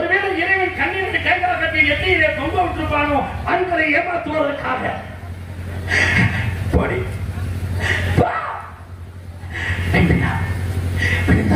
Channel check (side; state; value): both; identical; correlation 1.00